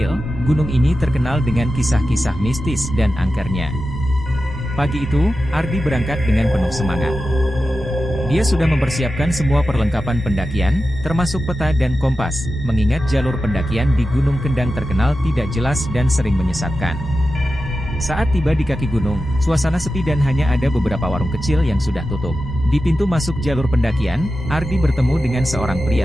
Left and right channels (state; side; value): noise; left; rumble, 15 dB below the sound